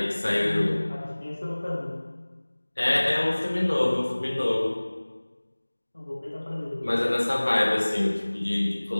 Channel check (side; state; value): both; inverted; correlation -1.00